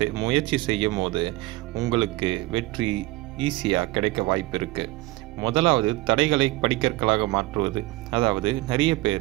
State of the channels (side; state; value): left; quieter; 19.7 dB